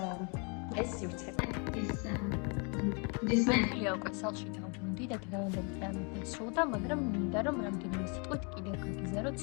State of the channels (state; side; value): quieter; right; 34.8 dB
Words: ეს სივრცე. მენია უკვე სალში დავბრუნდი და დღევანდელი დამესრულდა, მაგრამ მინდა რომ რამდენიმე სიტყვით კიდევ გაგიზარდოთ